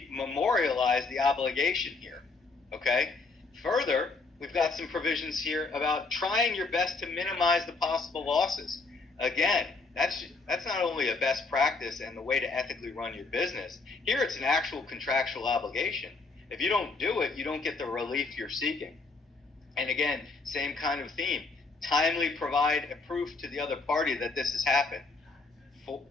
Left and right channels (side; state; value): right; quieter; 3.9 dB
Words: memorialize the obligation here, okay? Further, we've got some provisions here about trying your best to minimize the possible losses. Again, that's not only a best practice and the way to ethically run your business. Here it's an actual contractual obligation. If you don't do it, you don't get the relief you're seeking. And again, same kind of theme. Timely provide a proof to the other party that this has happened.